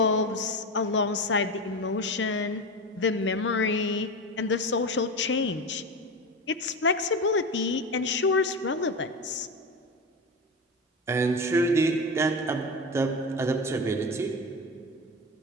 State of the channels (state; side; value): normal; both; correlation 0.22